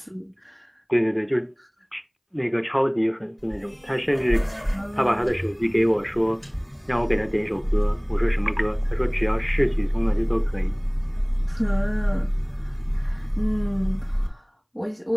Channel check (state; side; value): identical; both; correlation 1.00